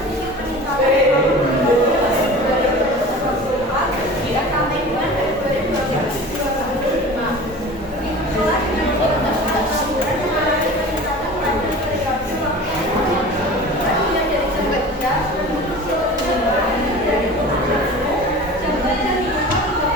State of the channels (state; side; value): normal; both; correlation 0.37